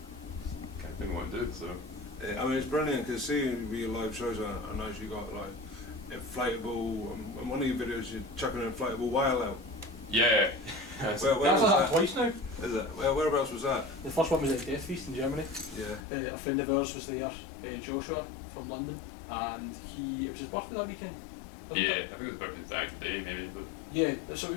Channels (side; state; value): right; drops out; at 16.1 s